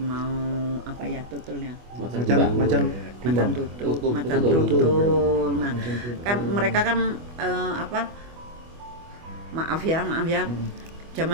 tutulnya. Macan tutul. Nah, kan mereka kan maaf ya.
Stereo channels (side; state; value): left; late; 25 ms